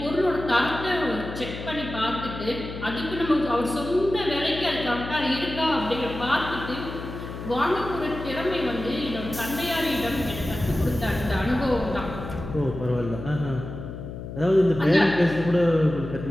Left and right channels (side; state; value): left; noise; hum, 9 dB below the sound